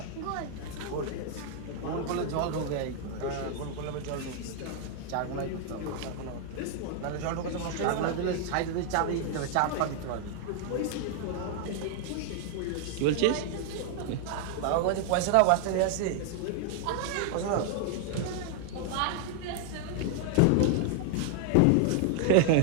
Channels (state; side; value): different; both; correlation 0.00